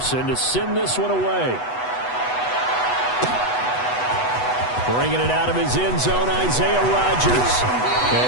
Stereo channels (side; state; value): right; late; 8.1 ms